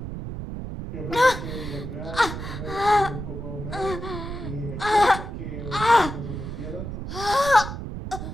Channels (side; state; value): right; noise; rumble, 7 dB below the sound